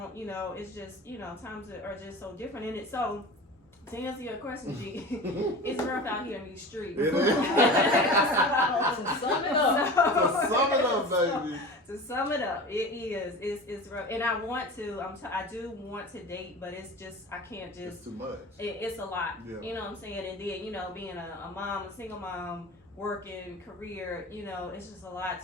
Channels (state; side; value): normal; both; correlation 0.34